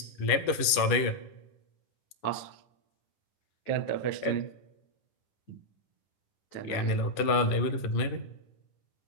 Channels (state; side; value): late; right; 10 ms